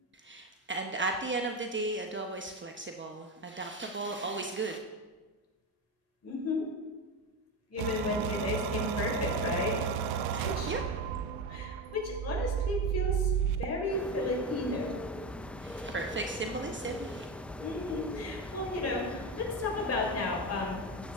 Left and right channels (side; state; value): both; normal; correlation 0.18